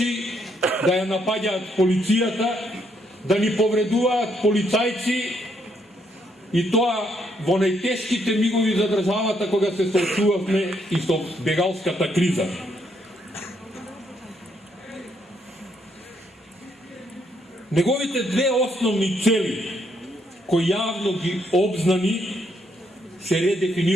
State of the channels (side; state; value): both; normal; correlation 0.74